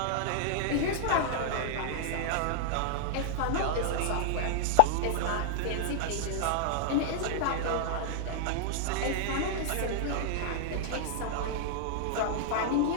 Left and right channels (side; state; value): both; different; correlation -0.01